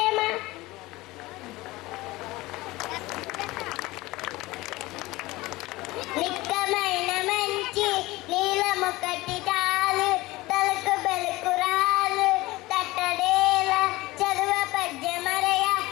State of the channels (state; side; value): quieter; right; 19.9 dB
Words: నిక్కమైన మంచి నీలముకటి తాలు తలకు బెలుకురాలు తట్టడేల చదువ పద్యమరయ